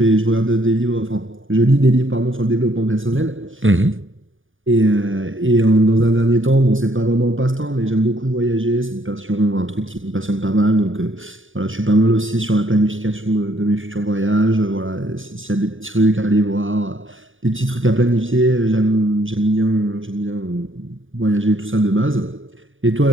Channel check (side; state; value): left; late; 0.58 ms